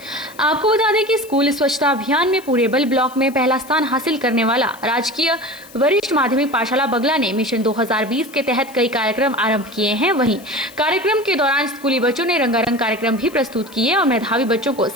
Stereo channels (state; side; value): noise; left; hiss, 22 dB below the sound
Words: आपको बता दें कि स्कूल स्वच्छता अभियान में पूरेबल ब्लॉक में पहला स्थान हासिल करने वाला राजकीय वरिष्ठ माध्यमिक पाठशाला बगला ने मिशन 2020 के तहत कई कार्यक्रम आरंभ किए हैं। वहीं कार्यक्रम के दौरान स्कूली बच्चों ने रंगारंग कार्यक्रम भी प्रस्तुत किए और मेधावी बच्चों को